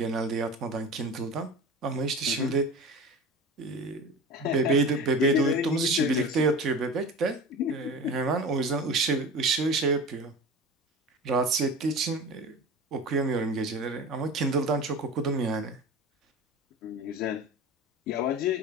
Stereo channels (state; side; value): normal; both; correlation 0.33